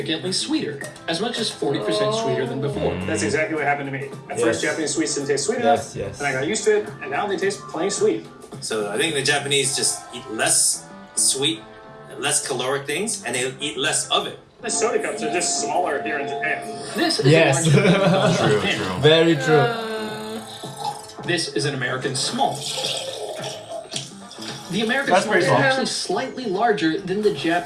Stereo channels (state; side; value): identical; both; correlation 1.00